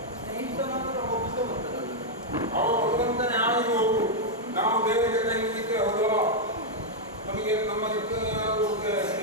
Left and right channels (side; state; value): both; normal; correlation -0.03